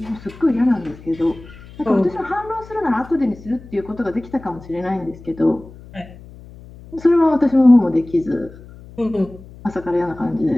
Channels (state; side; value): noise; left; hum, 19 dB below the sound